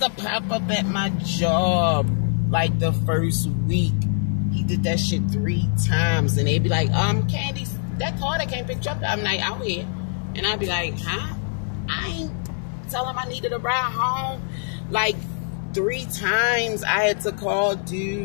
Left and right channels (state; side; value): silent; right; 63 dB below the other